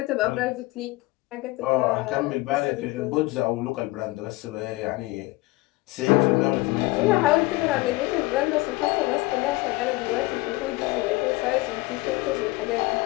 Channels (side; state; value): right; quieter; 21.4 dB